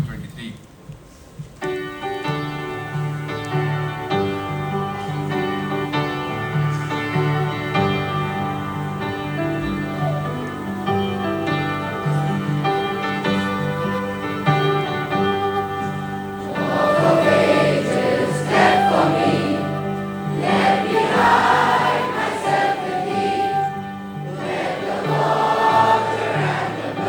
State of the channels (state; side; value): identical; both; correlation 1.00